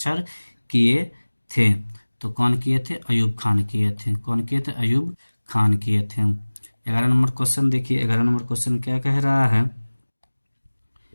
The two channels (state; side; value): inverted; both; correlation -1.00